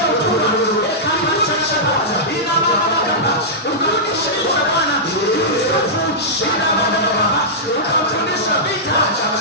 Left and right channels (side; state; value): both; normal; correlation -0.12